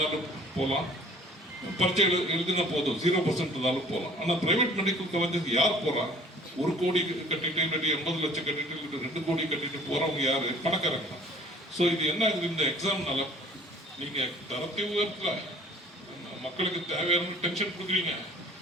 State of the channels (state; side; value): normal; both; correlation 0.51